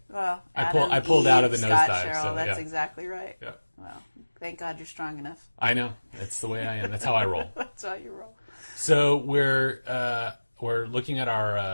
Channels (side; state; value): both; inverted; correlation -1.00